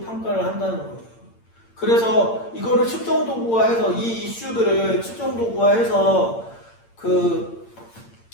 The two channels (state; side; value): late; right; 8.8 ms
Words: 평가를 한다는 거예요. 그래서 이거를 측정 도구화해서 이 이슈들을 측정 도구화해서